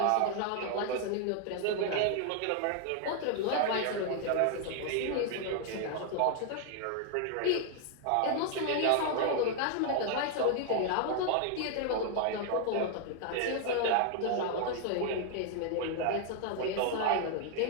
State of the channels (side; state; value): both; different; correlation 0.00